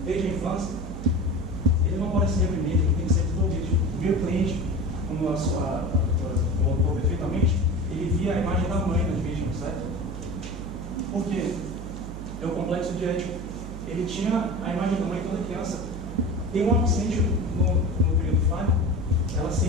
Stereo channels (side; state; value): right; noise; hum, 10 dB below the sound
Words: desde a infância, ele não pode ser reprimido, ele tem que ser desenvolvido. O meu cliente, como a doutora colocou perfeitamente, ele via a imagem da mãe nas vítimas, certo? Por quê? É o complexo de Édipo. Ele tinha a imagem da mãe toda criança. Tem uma que sente no período falho, ela